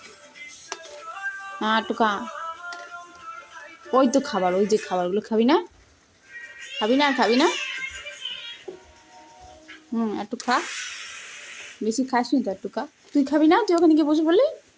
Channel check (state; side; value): identical; both; correlation 1.00